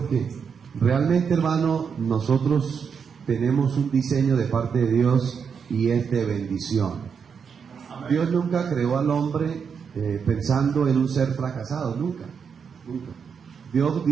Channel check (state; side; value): quieter; left; 6.5 dB